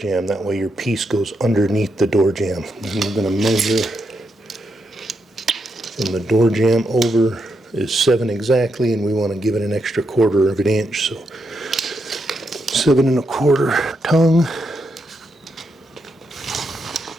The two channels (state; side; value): normal; both; correlation 0.82